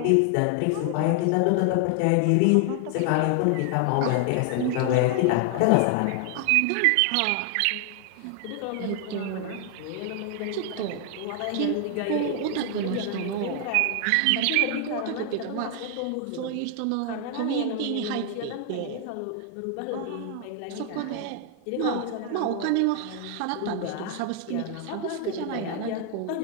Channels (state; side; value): different; both; correlation 0.00